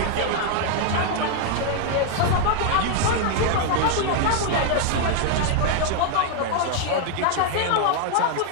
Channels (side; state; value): both; different; correlation 0.00